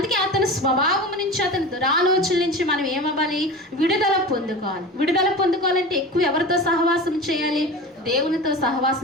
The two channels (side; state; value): both; normal; correlation 0.32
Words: అతని స్వభావం నుంచి, అతని దురాలోచన నుంచి మనం ఏమవ్వాలి? విడుదల పొందుకోవాలి. విడుదల పొందుకోవాలంటే ఎక్కువ ఎవరితో సహవాసం చేయాలి? దేవునితో